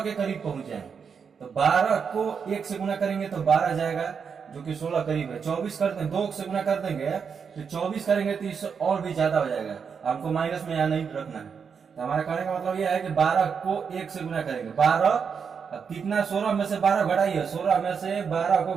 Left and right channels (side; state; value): left; quieter; 6.4 dB